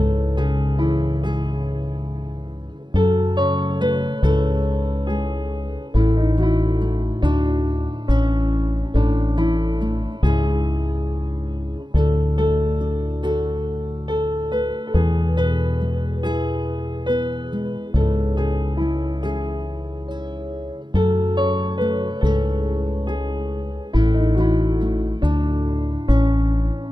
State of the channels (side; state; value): left; late; 0.22 ms